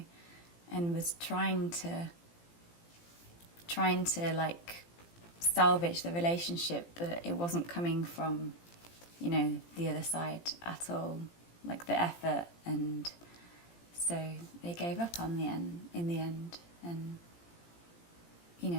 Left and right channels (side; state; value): right; late; 18 ms